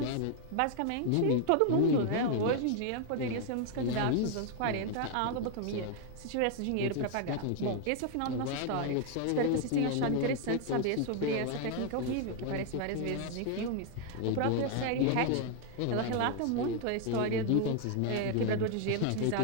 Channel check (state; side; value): different; both; correlation 0.00